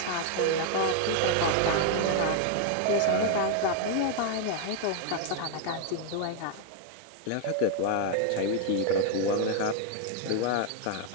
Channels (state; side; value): different; both; correlation 0.00